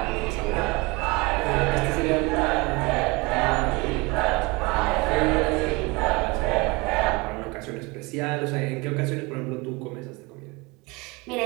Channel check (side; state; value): left; quieter; 25.7 dB